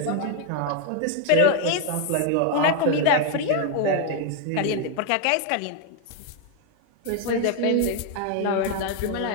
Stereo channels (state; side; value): different; both; correlation 0.00